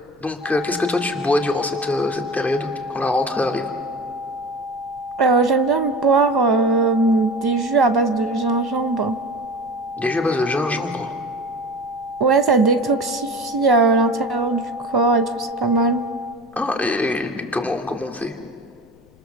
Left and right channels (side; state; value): left; noise; rumble, 29 dB below the sound